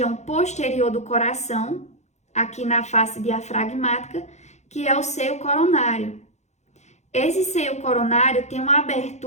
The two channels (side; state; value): right; late; 0.33 ms